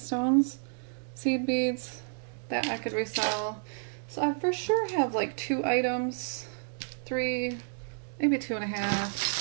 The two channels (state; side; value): silent; left; digital silence